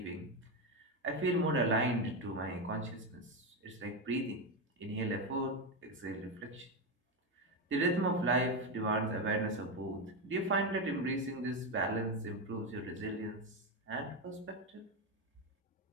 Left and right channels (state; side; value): normal; both; correlation 0.11